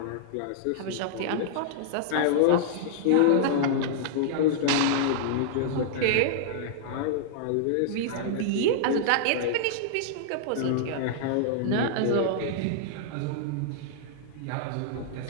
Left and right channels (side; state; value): both; different; correlation -0.01